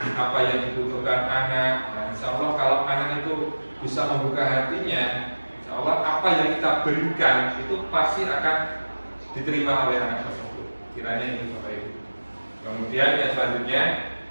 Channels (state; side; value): inverted; both; correlation -1.00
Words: apa yang dibutuhkan anak. Nah, insya Allah kalau anak itu bisa membuka hatinya, insya Allah apa yang kita berikan itu pasti akan diterima oleh anak tersebut. Kiranya ini Bapak Ibu. Kemudian yang selanjutnya,